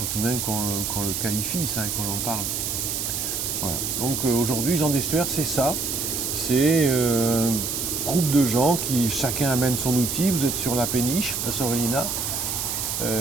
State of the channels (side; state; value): right; noise; hiss, 2 dB below the sound